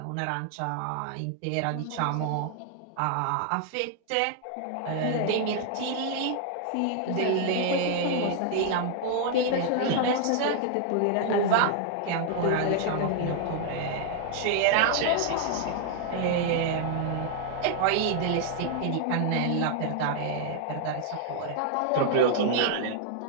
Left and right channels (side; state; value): both; different; correlation 0.00